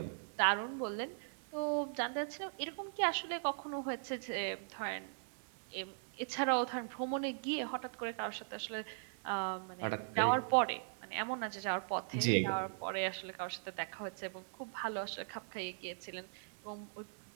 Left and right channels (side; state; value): left; silent; 51 dB below the other